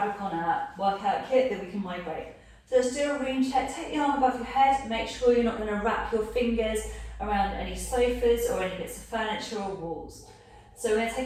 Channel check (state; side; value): identical; both; correlation 1.00